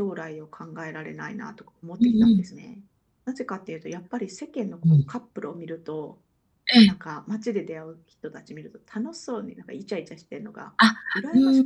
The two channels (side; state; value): both; identical; correlation 1.00